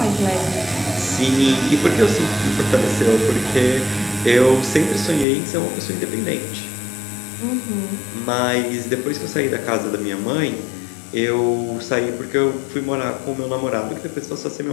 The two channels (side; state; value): right; drops out; at 5.2 s